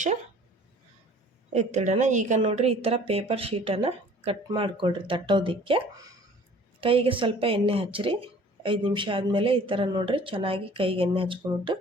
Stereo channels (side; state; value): both; normal; correlation 0.50